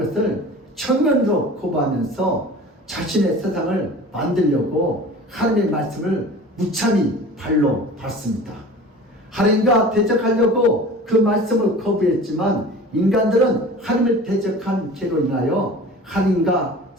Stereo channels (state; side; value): normal; both; correlation 0.40